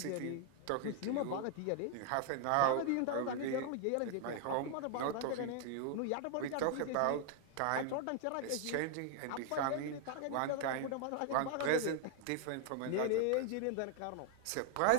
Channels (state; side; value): different; both; correlation 0.00